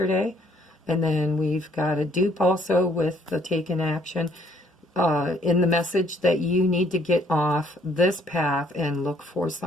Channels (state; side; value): normal; both; correlation 0.64